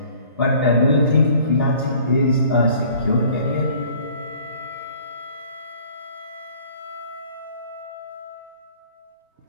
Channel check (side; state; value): both; inverted; correlation -0.53